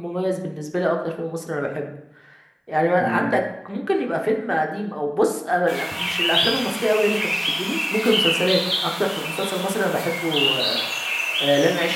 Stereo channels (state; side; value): identical; both; correlation 1.00